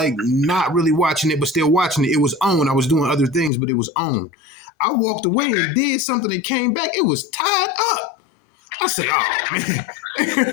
not really watching it, but still watching it. It was on. I was doing other things, but it was on. I walked away Okay. and did something and came back. It was tied up. I said, "Oh man!"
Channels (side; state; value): right; drops out; at 3.5 s